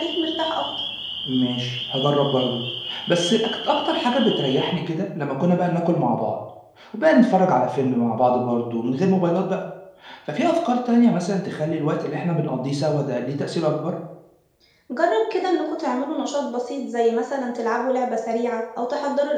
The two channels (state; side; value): identical; both; correlation 1.00